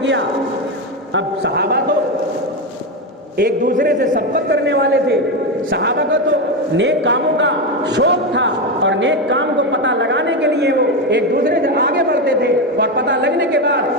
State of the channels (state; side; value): normal; both; correlation 0.12